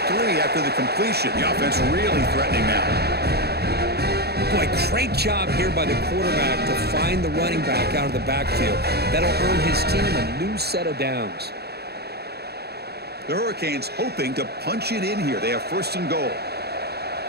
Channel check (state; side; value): late; left; 0.47 ms